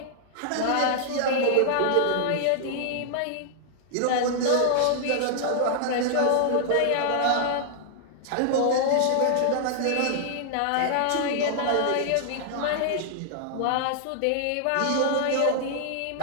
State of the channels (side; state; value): both; different; correlation -0.01